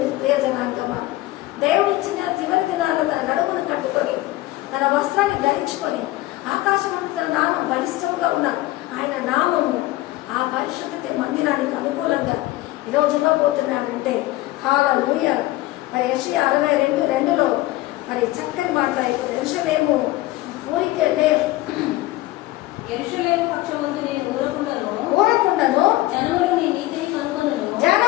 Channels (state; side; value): quieter; right; 17.8 dB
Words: జనాంగమా, దేవుడు ఇచ్చిన చివరి దినాల్లో తన నడుమును కట్టుకొని, తన వస్త్రాన్ని ధరించుకొని, ఆకాశమందు తన నామం బలిష్టంగా ఉన్న ఆయన నామము ఆ పరిశుద్ధ మందిరానికి అనుకూలంగా ఈరోజు ఇవ్వబోతున్నాడంటే హల్లెలూయా. మరి యెషయా 62:2 మరి చక్కని మాట్లాడుతుంది. యెరూషలేము ఊరికే యెరూషలేము పక్షమందు నేను ఊరకుండను, జనములు నీ నీతిని